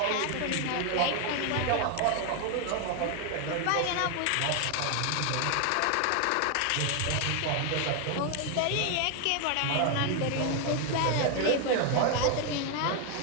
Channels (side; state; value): both; different; correlation 0.00